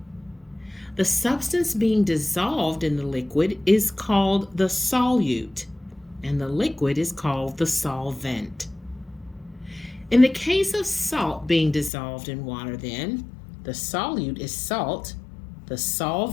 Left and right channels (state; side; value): drops out; right; at 11.9 s